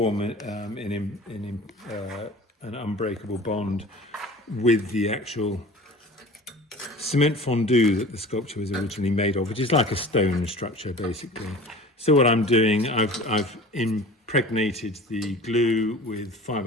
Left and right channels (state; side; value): normal; both; correlation 0.40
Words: an unbreakable bond with the actual cement fondue that the sculpture was originally made of, which is like a stone structure, basically. So what I'm doing, I've impregnated the glue with